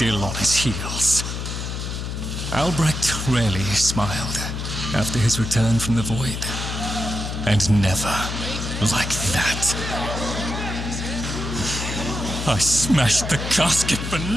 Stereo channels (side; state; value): left; noise; hum, 5 dB below the sound